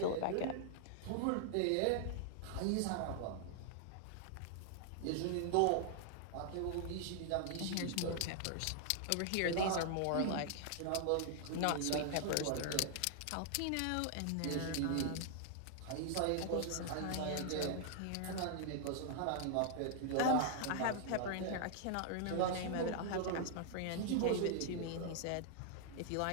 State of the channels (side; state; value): both; different; correlation 0.00